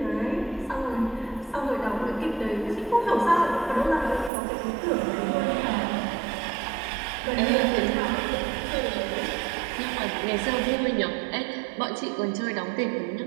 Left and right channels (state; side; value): drops out; left; at 4.3 s